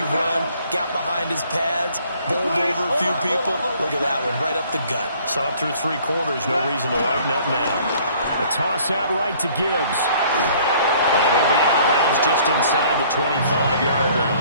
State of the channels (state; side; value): inverted; both; correlation -0.57